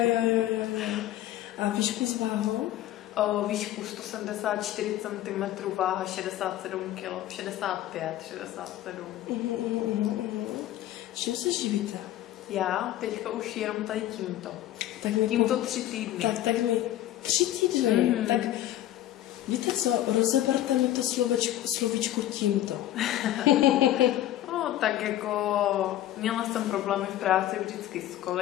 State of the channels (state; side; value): quieter; right; 13.4 dB